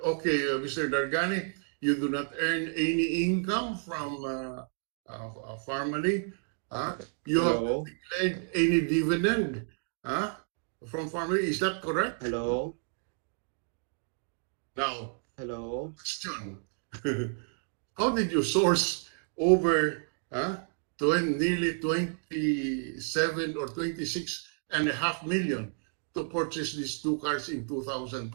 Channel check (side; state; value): left; silent; 57 dB below the other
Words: Mr. Dargani, you do not earn any income from Farmally. You have Hello? not declared any dividend from Farmally. Is that correct? Hello? Now, Hello? question. How did you source over nearly 27 or 26.5 million to purchase these two cars in